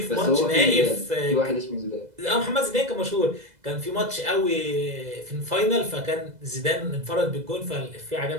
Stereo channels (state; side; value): late; left; 2.0 ms